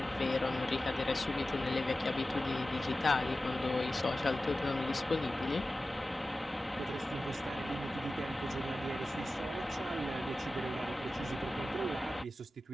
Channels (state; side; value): normal; both; correlation 0.95